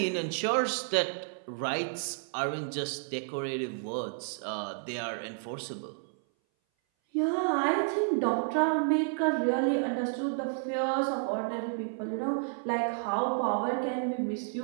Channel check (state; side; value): silent; left; 57 dB below the other